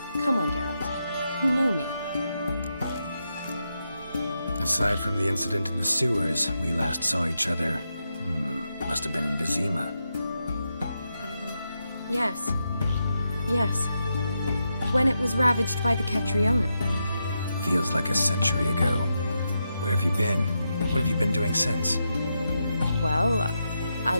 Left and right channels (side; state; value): both; inverted; correlation -0.85